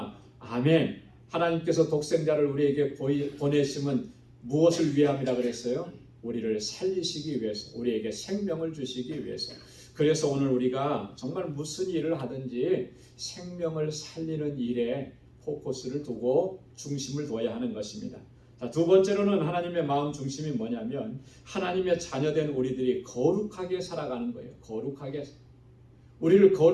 아멘. 하나님께서 독생자를 우리에게 보내심은 무엇을 위함이라 그랬어요? 우리를 살리시기 위해서, 우리에게 생명을 주시기 위해서. 그래서 오늘 우리가 정말 무슨 일을 하든지 생명을 살리는 일에 포커스를 두고 중심을 둬야 하는 것입니다. 자, 두 번째로는 하나님의 마음 중심이 뭐냐면 하나님의 자녀된 우리들이 거룩하게 살아가는 거예요. 거룩하게. 우리를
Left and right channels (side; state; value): both; identical; correlation 1.00